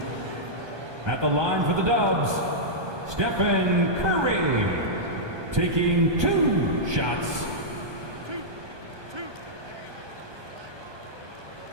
At the line for the Dubs, Stephen Curry taking 2 shots.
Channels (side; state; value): left; late; 1.2 ms